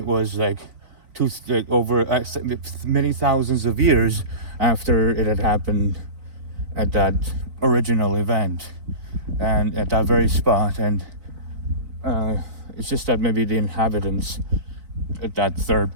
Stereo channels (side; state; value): left; late; 4.0 ms